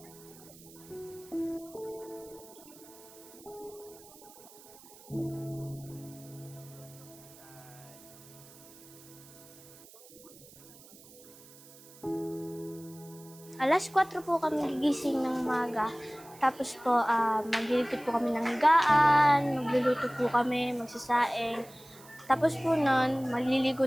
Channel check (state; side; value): noise; right; hiss, 21 dB below the sound